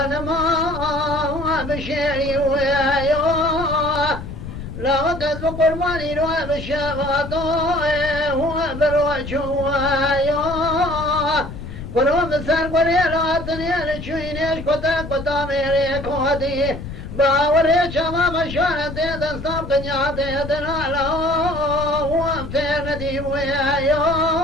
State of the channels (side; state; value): left; noise; rumble, 9 dB below the sound